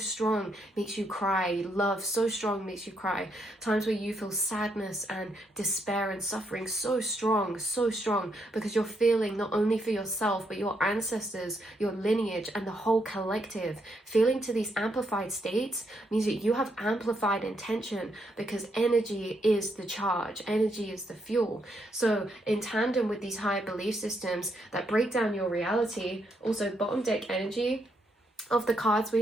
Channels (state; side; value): normal; both; correlation 0.77